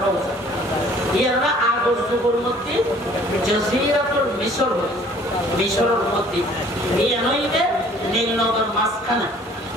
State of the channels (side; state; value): both; normal; correlation 0.54